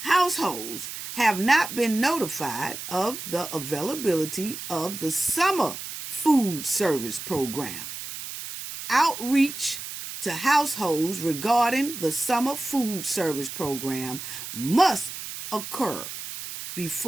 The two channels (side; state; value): right; noise; hiss, 9 dB below the sound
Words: Households have not been notified of the availability of the summer food service program. Outreach to households regarding the summer food service program must occur